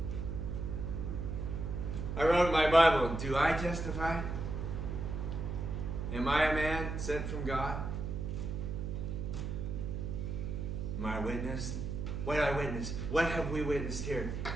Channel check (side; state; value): right; noise; hum, 3 dB below the sound